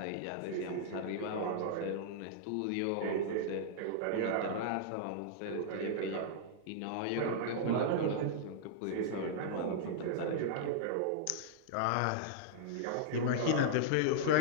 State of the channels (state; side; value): different; both; correlation -0.02